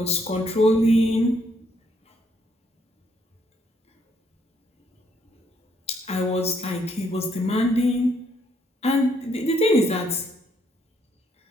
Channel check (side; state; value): both; normal; correlation 0.71